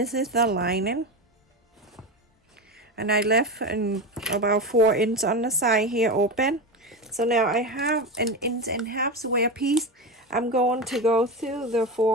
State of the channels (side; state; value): both; normal; correlation 0.19